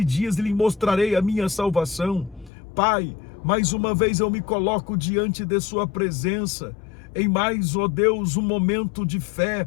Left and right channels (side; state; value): right; drops out; at 2.5 s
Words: dias e lhe mostrarei a minha salvação. Pai, mais uma vez eu me coloco diante de sua presença, em mais, ó Deus, um momento de fé